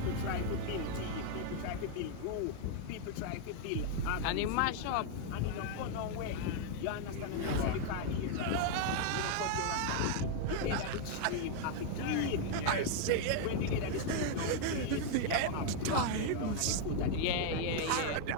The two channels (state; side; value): different; both; correlation 0.00